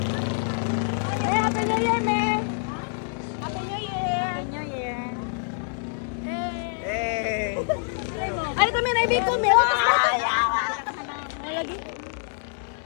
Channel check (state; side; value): silent; right; 61 dB below the other